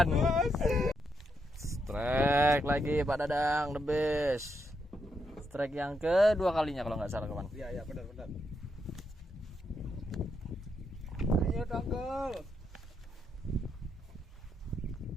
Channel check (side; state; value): both; normal; correlation 0.80